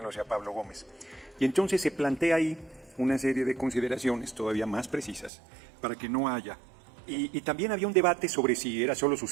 lo decía Pablo Gómez. Y entonces se plantea ahí una serie de consideraciones todavía más precisas para que no haya. Y también había un debate sobre si era solo su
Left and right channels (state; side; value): drops out; left; at 5.3 s